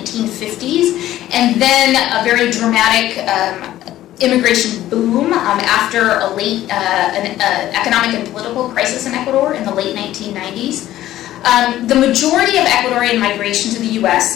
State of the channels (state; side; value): quieter; right; 13.9 dB